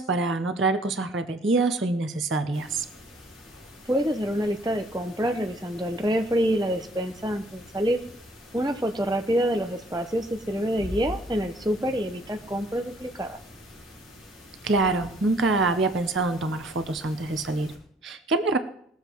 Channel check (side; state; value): both; normal; correlation 0.61